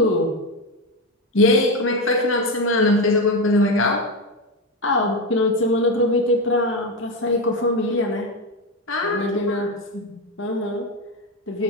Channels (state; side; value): normal; both; correlation 0.12